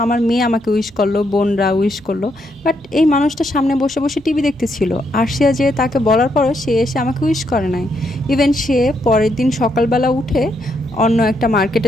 আমার মেয়ে আমাকে উইশ করলো, বোনরা উইশ করলো, বাট এই মানুষটা সামনে বসে বসে টিভি দেখতেছিল। আর সে যে তাকে বলার পরও সে এসে আমাকে উইশ করে নাই। ইভেন সে পরের দিন সকালবেলা উঠে অন্য একটা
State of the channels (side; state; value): both; normal; correlation 0.77